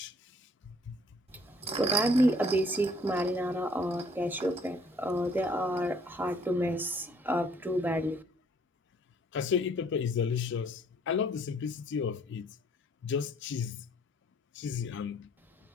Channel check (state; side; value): normal; both; correlation 0.60